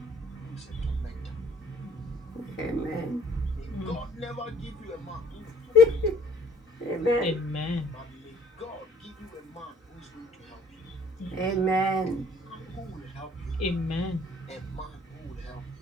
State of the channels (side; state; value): both; normal; correlation 0.59